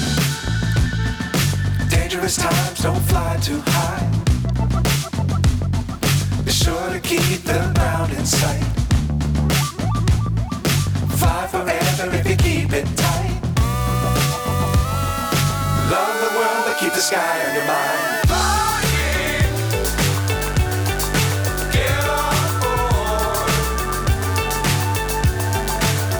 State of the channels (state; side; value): identical; both; correlation 1.00